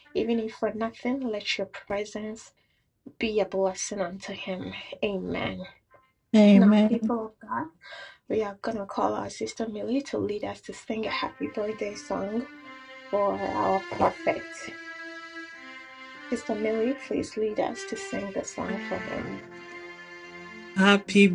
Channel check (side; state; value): both; identical; correlation 1.00